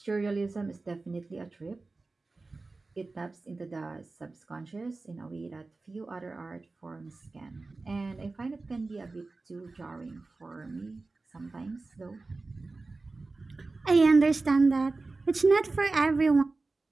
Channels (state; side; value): quieter; left; 3.6 dB